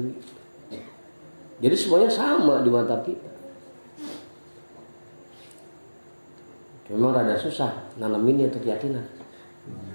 Jadi semuanya sama di mata kita. Memang rada susah nanamin itu keyakinan,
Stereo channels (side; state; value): both; inverted; correlation -1.00